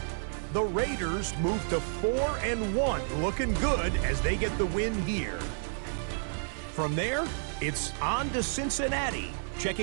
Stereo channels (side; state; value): left; silent; 56 dB below the other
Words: The Raiders move to 4-1, looking good as they get the win here. From there, it's on to Cincinnati.